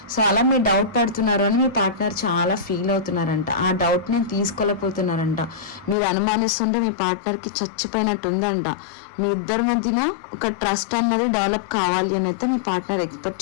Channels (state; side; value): drops out; right; at 6.0 s